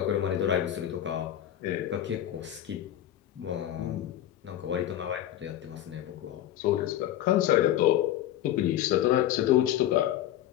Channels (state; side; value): quieter; right; 12.2 dB